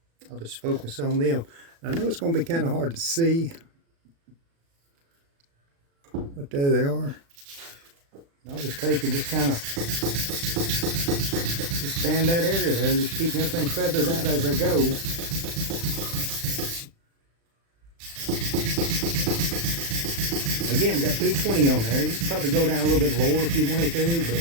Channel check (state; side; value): late; left; 36 ms